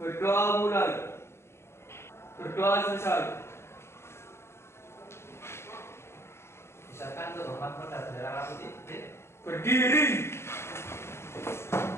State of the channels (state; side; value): late; right; 0.12 ms